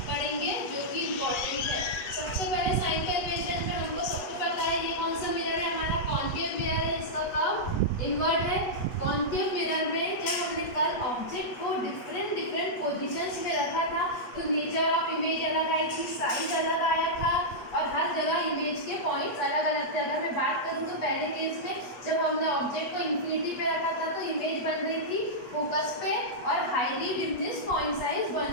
पढ़ेंगे जो कि इम्पोर्टेंट है। सबसे पहले साइन कन्वेंशन में हमको सबको पता है ये कौन सा मिरर है, हमारा कॉन्केव मिरर है। इसका कर्व इनवर्ट है। कॉन्केव मिरर में जब हमने कल ऑब्जेक्ट को डिफरेंट पोजीशंस में रखा था तो नेचर ऑफ इमेज अलग आई थी, साइज अलग आया था और हर जगह इमेज के पॉइंट्स अलग अलग थे। अगर मैं बात करूँ तो पहले केस में जब हमने ऑब्जेक्ट को इन्फिनिटी पे रखा था तो इमेज बन रही थी फोकस पे और हाईली डिमिनिश पॉइंट साइज बन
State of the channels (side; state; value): right; late; 8.2 ms